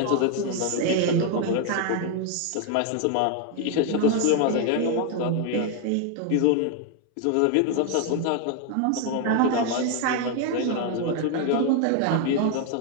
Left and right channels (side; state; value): both; different; correlation 0.00